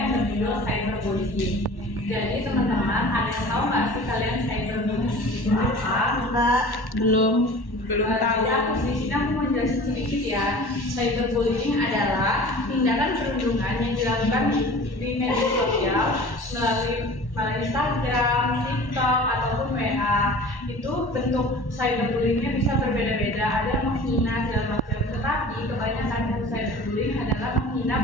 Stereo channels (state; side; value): late; right; 1.1 ms